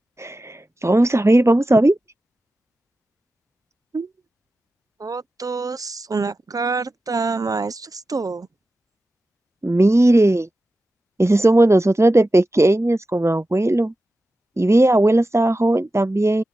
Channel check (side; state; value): both; normal; correlation 0.93